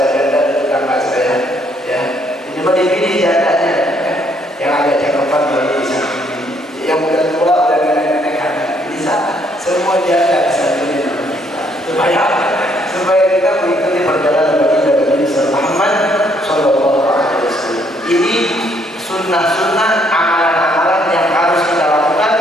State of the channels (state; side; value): normal; both; correlation 0.68